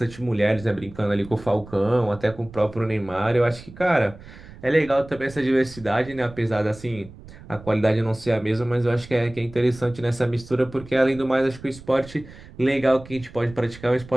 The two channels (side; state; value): right; noise; rumble, 18 dB below the sound